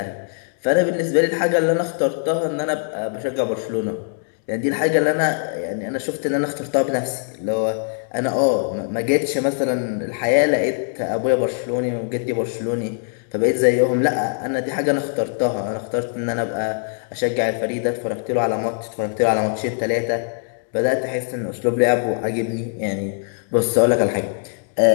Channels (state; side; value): silent; right; digital silence